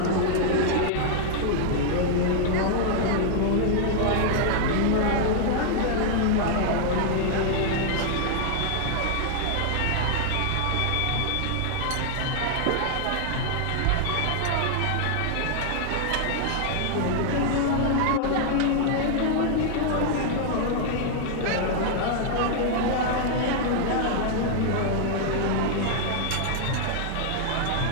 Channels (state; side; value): different; both; correlation -0.01